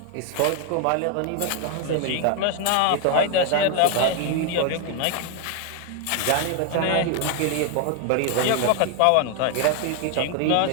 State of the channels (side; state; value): both; different; correlation 0.00